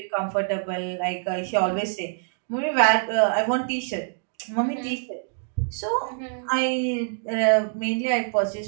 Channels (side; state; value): left; silent; digital silence